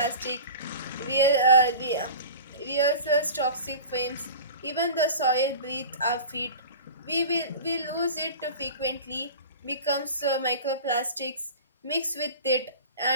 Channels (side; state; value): both; inverted; correlation -0.36